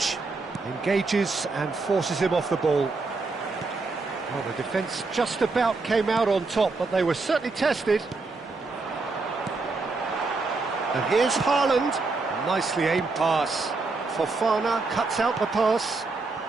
Engages and forces him off the ball. Well, the defence just about came out on top, but they were certainly tested. And here's Haaland. A nicely aimed pass. Fofana cuts out the pass.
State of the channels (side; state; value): left; quieter; 3.8 dB